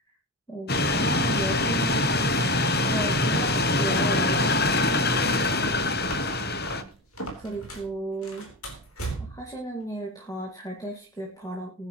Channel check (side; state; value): both; normal; correlation 0.23